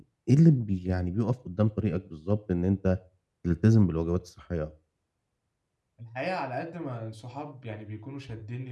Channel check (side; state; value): both; identical; correlation 1.00